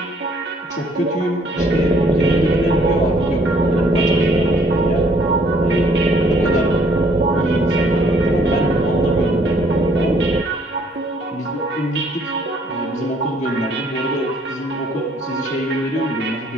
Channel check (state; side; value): normal; both; correlation 0.63